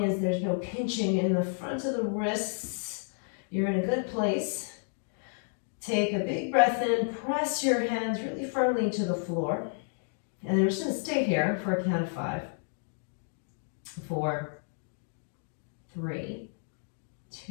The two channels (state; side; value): silent; right; digital silence